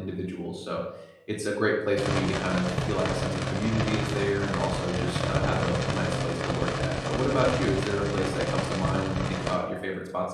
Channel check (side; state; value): both; identical; correlation 1.00